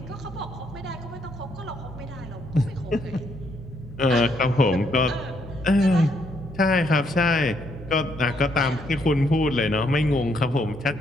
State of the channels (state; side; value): noise; left; rumble, 24 dB below the sound